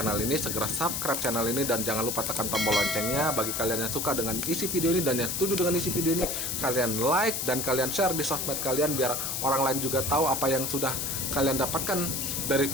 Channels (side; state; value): left; noise; hiss, 1 dB below the sound